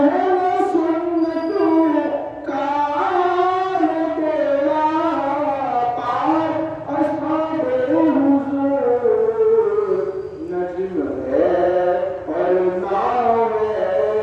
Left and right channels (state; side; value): identical; both; correlation 1.00